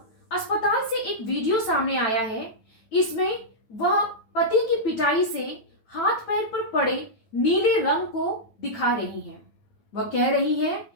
अस्पताल से एक वीडियो सामने आया है। इसमें वह पति की पिटाई से हाथ पैर पर पड़े नीले रंग को दिखा रही हैं। वह कह रही हैं,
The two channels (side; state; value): right; late; 9.2 ms